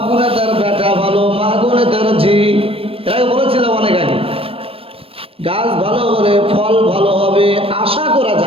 গুনে তার বেটা ভালো, মা গুনে তার ঝি। এর আগে বলেছিলাম অনেক আগে। গাছ ভালো হলে ফল ভালো হবে আশা করা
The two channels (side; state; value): left; late; 0.27 ms